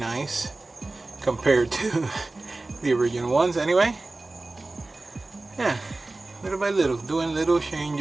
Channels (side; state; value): left; quieter; 3.1 dB